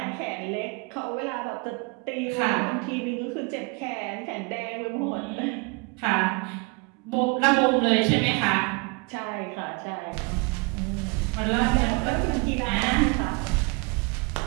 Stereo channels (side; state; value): left; quieter; 29.2 dB